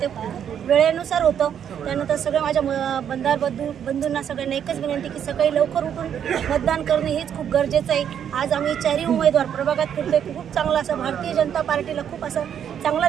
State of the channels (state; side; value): quieter; left; 8.9 dB